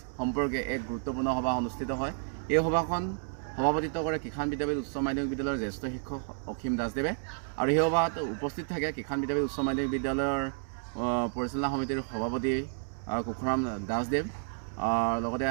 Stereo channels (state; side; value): silent; left; digital silence